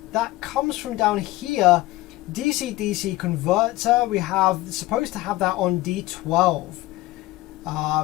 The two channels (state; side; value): quieter; right; 18.3 dB